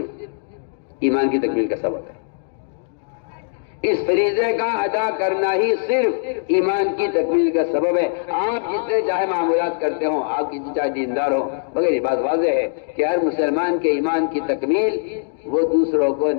ایمان کی تکمیل کا سبب ہے۔ اس فریضے کا ادا کرنا ہی صرف ایمان کی تکمیل کا سبب ہے۔ آپ جتنے چاہے معمولات کرتے ہوں، آپ کتنے چاہے دیندار ہوں، مگر یہ بات واضح ہے کہ ہر مسلمان کے ایمان کی تکمیل وہ دوسروں کو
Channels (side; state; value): right; silent; digital silence